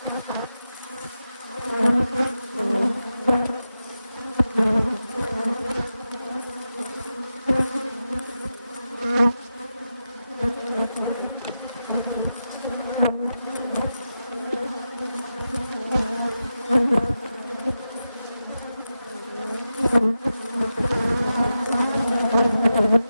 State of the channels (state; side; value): inverted; both; correlation -0.90